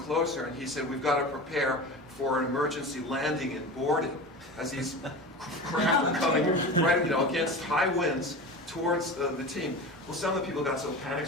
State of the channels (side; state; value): both; normal; correlation 0.30